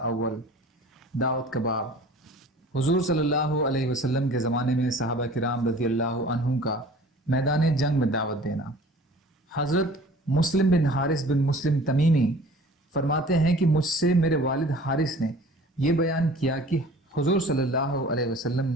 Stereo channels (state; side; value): normal; both; correlation 0.46